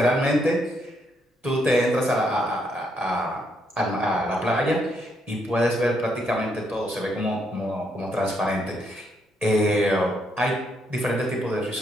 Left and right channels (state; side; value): normal; both; correlation 0.75